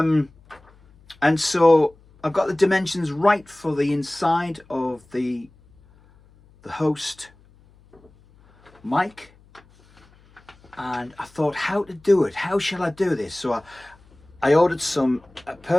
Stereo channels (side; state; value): left; noise; hum, 28 dB below the sound